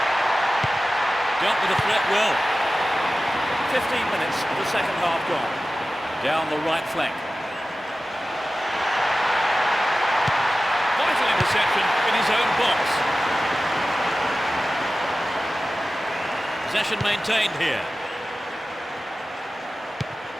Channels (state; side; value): normal; both; correlation 0.95